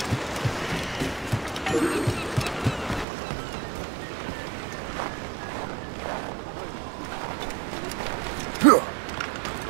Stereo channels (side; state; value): left; drops out; at 3.1 s